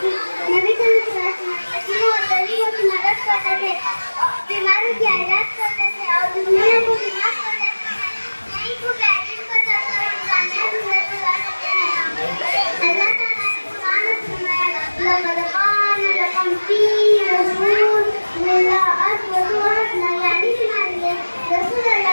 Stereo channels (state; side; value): inverted; both; correlation -1.00